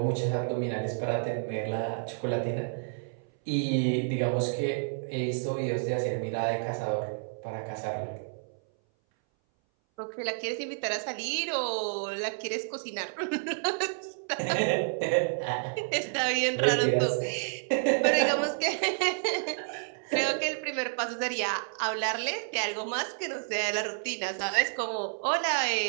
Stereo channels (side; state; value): left; silent; 58 dB below the other